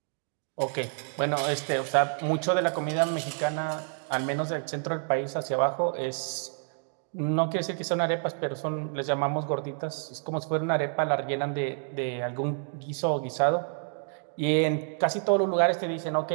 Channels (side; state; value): left; silent; 59 dB below the other